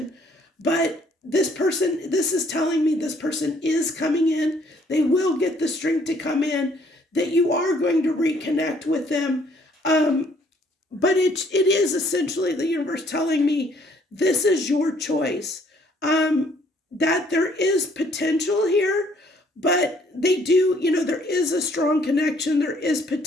but this is telling me this person is coming in. They will get the strength to come in, that you are going to reconnect with them. But it is essentially the universe telling me this is your choice. That there is potential here, but they do, there is a strong connection, there is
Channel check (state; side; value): normal; both; correlation 0.63